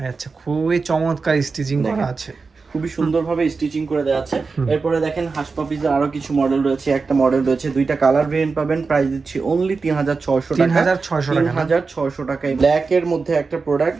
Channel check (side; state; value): left; quieter; 4.5 dB